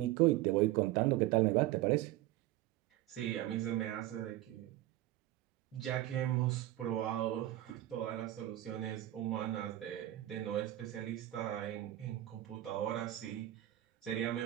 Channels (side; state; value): left; quieter; 15.0 dB